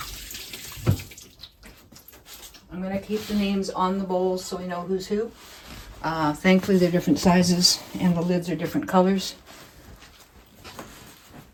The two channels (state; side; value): identical; both; correlation 1.00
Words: I'm going to keep the names on the bowls so we know who's who. Thankfully, they're different sizes and the lids are different colors.